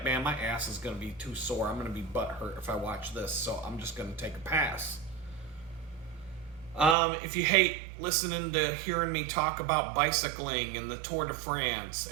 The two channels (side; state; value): left; drops out; at 7.0 s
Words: man, my ass is going to be too sore. I'm going to be butthurt if I watch this, so I'm just going to take a pass. If you hate listening to hearing me talk about bicycling and the Tour de France